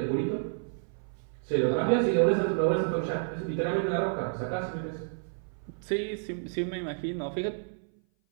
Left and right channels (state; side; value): silent; left; 56 dB below the other